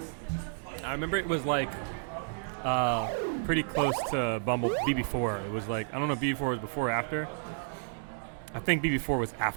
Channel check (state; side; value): silent; left; digital silence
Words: I remember it was like pretty close to BB4. It was like, I don't know if BB4 was before or after. I think BB4 was